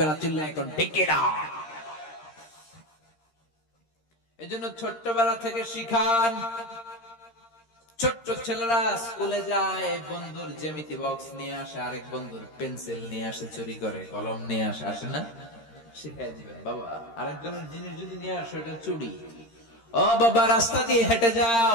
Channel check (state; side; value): late; right; 13 ms